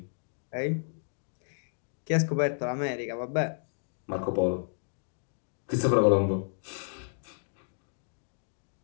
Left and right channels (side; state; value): right; silent; digital silence